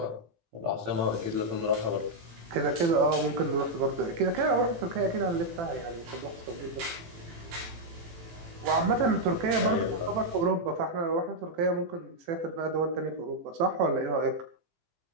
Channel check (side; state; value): left; late; 18 ms